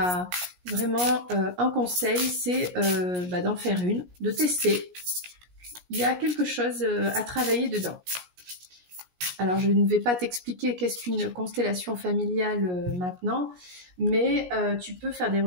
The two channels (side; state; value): left; late; 17 ms